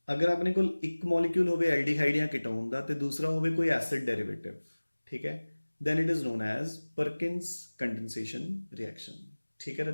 ਅਗਰ ਆਪਣੇ ਕੋਲ ਇੱਕ ਮੋਲੀਕਿਊਲ ਹੋਵੇ ਐਲਡੀਹਾਈਡ ਜਾਂ ਕੀਟੋਨ ਦਾ ਤੇ ਦੂਸਰਾ ਹੋਵੇ ਕੋਈ ਐਸਿਡ ਡੈਰੀਵੇਟਿਵ, ਠੀਕ ਹੈ, then it is known as Perkins condensation reaction, ਠੀਕ ਹੈ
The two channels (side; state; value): both; inverted; correlation -1.00